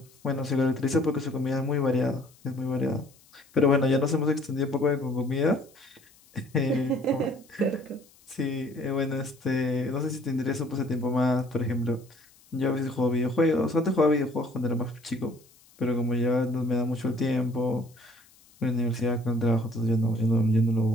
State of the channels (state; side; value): noise; left; hiss, 28 dB below the sound